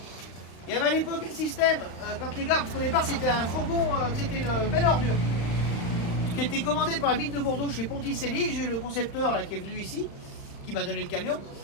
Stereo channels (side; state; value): right; late; 35 ms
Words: Il y avait à l'époque un système, quand les gars, parce qu'au départ c'était un fourgon, c'était une belle ordure, qui était commandé par la ville de Bordeaux chez Ponticelli. J'ai eu le concepteur là, qui est venu ici, qui m'a donné le camion.